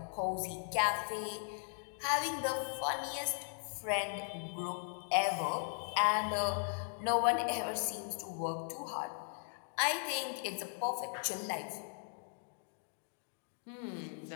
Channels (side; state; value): right; silent; digital silence